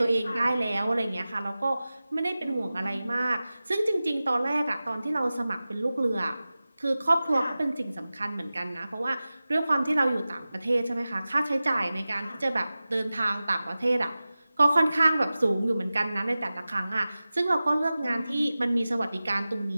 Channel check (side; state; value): both; inverted; correlation -0.96